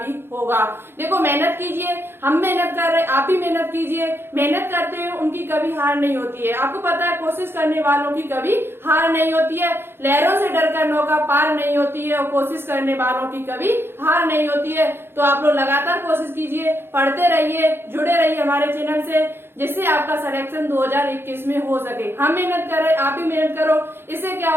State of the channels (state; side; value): late; left; 0.11 ms